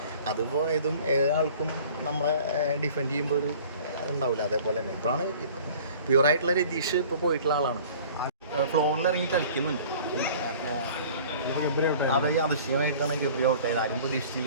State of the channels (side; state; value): both; inverted; correlation -0.47